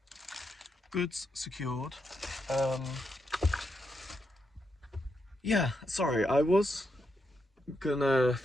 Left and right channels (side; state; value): both; normal; correlation 0.82